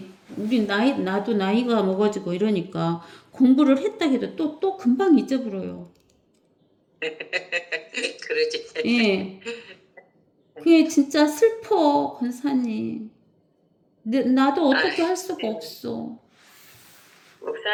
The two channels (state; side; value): identical; both; correlation 1.00